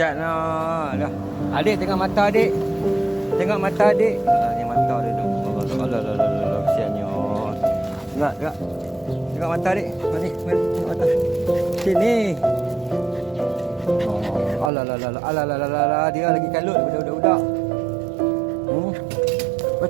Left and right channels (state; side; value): drops out; left; at 14.7 s